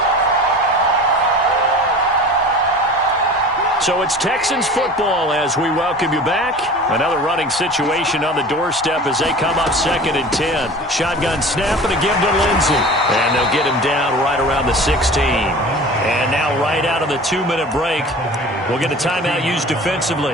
So it's Texans football as we welcome you back. Another running situation on the doorstep as they come up 2nd and 10. Shotgun snap and a give to Lindsey. And they'll get him down right around the 16. And now right out of the 2-minute break, we'll get a timeout used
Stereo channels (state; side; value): normal; both; correlation 0.39